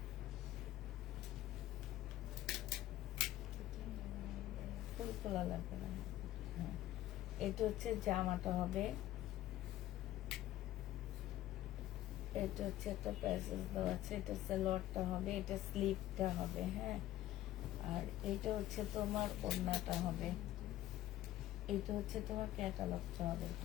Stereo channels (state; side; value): quieter; right; 14.3 dB